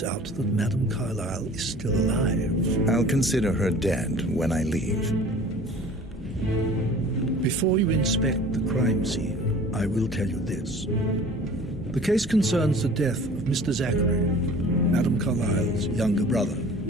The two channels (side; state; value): both; normal; correlation 0.45